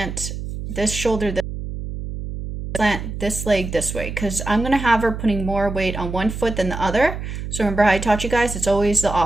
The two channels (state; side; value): noise; right; hum, 7 dB below the sound